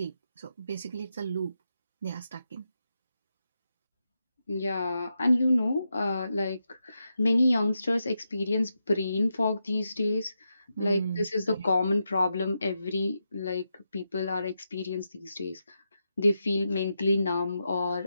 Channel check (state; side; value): inverted; both; correlation -0.86